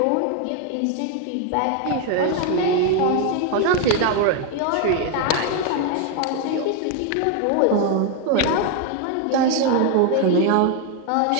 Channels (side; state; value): both; different; correlation 0.01